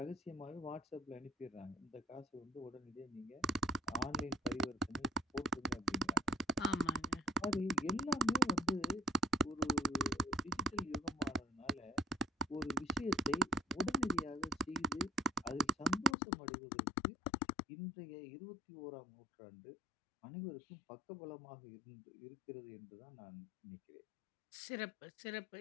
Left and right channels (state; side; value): drops out; right; at 16.2 s